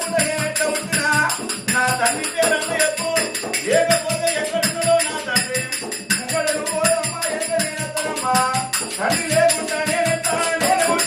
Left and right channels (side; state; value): both; identical; correlation 1.00